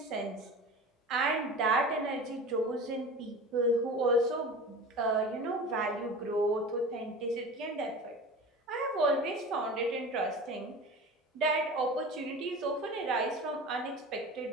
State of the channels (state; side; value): normal; both; correlation 0.34